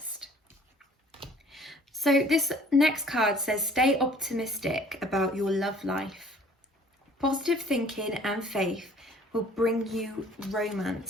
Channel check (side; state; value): both; normal; correlation 0.54